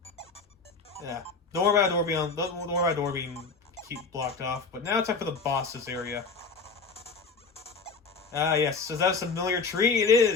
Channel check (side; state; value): right; quieter; 4.5 dB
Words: Yeah. Don't worry about a door being blocked off. But now it's time for the boss's area. Ah, yes. Is that a familiar tree? It